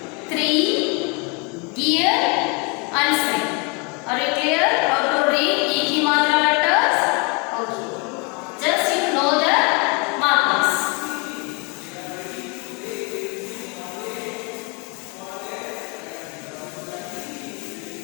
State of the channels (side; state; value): right; quieter; 32.0 dB